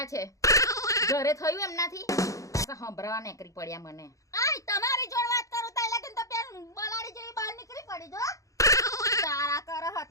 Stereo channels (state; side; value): late; right; 0.16 ms